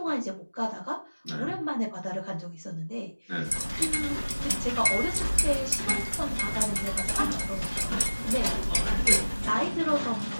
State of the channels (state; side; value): inverted; both; correlation -1.00